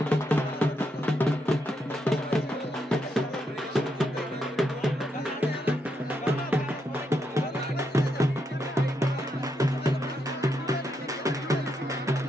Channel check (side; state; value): both; normal; correlation 0.80